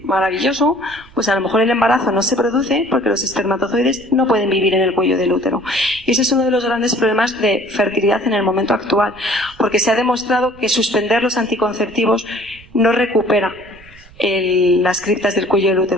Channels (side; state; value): right; noise; rumble, 23 dB below the sound